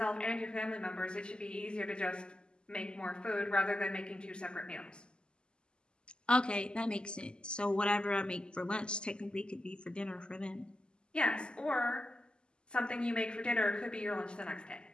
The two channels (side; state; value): right; late; 0.049 ms